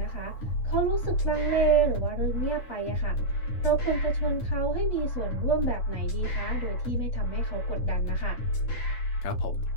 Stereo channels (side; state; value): right; late; 9.8 ms